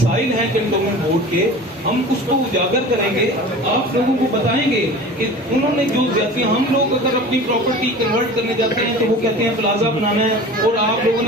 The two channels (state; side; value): normal; both; correlation 0.38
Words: ہیں کنٹونمنٹ بورڈ کے ہم اس کو اجاگر کریں گے, آپ لوگوں کو بتائیں گے کہ انہوں نے جو زیادتیاں, ہم لوگ اگر اپنی پراپرٹی کنورٹ کرنے جاتے ہیں تو وہ کہتے ہیں پلازا بنانا ہے اور آپ لوگوں